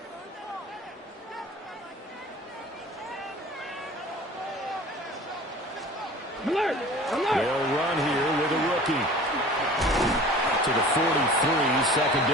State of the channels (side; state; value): both; normal; correlation 0.43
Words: Alert! Alert! They'll run here with a rookie. To the 43, second